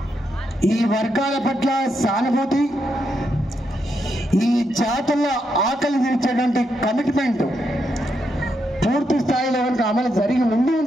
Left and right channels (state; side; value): normal; both; correlation 0.81